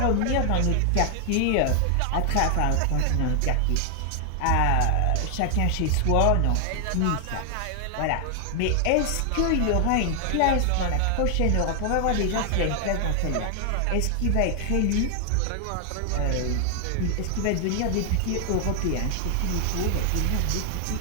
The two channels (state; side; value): different; both; correlation 0.00